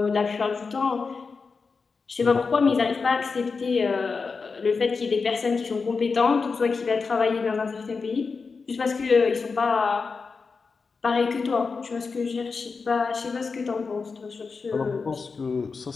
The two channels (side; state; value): right; quieter; 4.8 dB